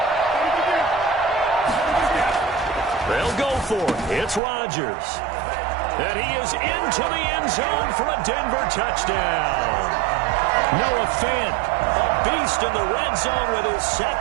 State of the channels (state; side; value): drops out; left; at 4.4 s